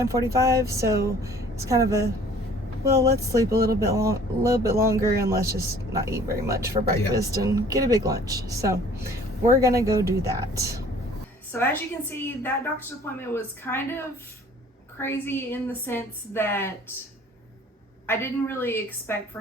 so it's kind of a, well, let's sleep a little bit longer, and let's just not eat very much for breakfast and get a big lunch. So we're gonna go do that. So as you can see, that doctor's appointment was kind of crazy in the sense that I didn't really expect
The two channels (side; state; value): both; normal; correlation 0.52